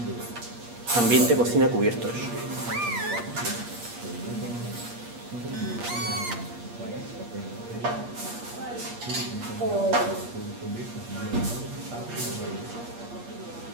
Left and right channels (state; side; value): late; left; 8.5 ms